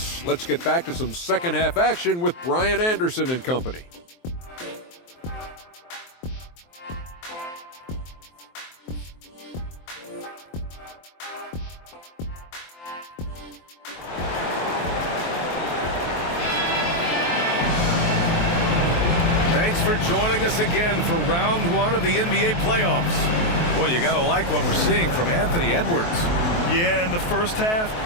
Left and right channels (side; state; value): right; late; 23 ms